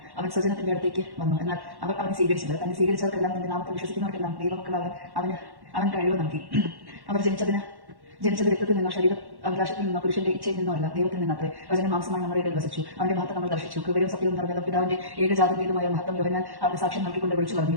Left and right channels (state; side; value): late; left; 1.1 ms